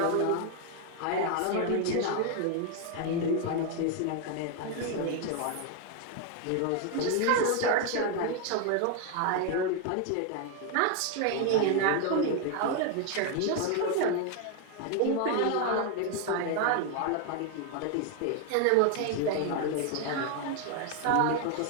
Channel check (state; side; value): different; both; correlation 0.01